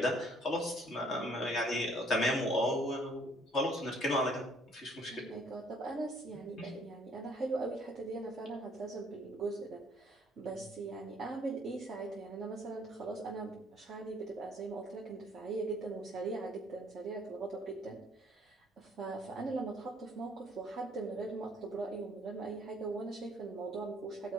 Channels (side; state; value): both; normal; correlation 0.62